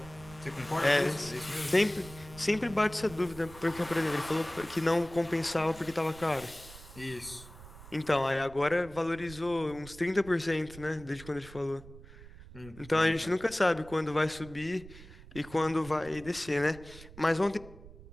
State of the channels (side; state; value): right; noise; rumble, 18 dB below the sound